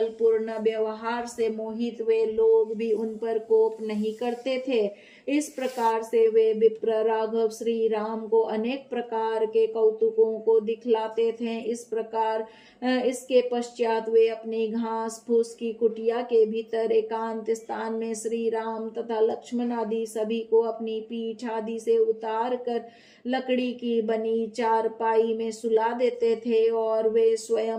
पूर्ण व्यवहार से मोहित वे लोग भी उन पर कोप नहीं करते थे। इस प्रकार से वे विप्र राघव श्री राम को अनेक प्रकार के कौतुकों को दिखलाते थे। इस प्रकार इसके पश्चात वे अपनी घास फूस की कुटिया के भीतर एकांत स्थान में श्री राम तथा लक्ष्मण आदि सभी को अपनी पीठ आदि से उतार कर लकड़ी की बनी चारपाई में सुला देते थे और वे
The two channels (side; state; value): both; identical; correlation 1.00